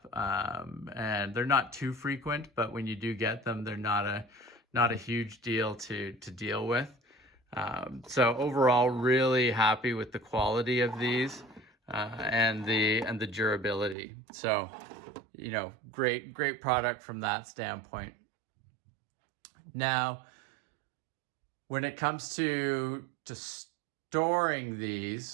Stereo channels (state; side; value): drops out; left; at 14.0 s